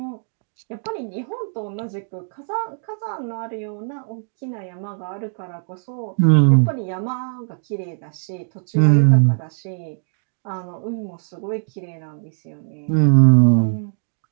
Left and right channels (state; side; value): silent; left; digital silence